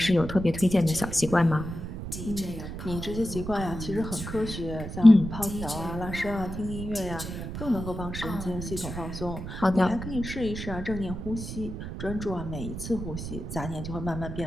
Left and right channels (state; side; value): noise; right; rumble, 7 dB below the sound